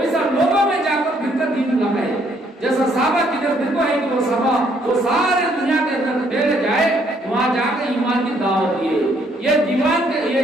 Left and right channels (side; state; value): both; normal; correlation 0.68